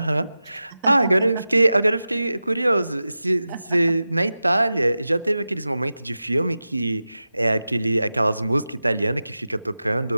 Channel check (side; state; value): both; inverted; correlation -0.93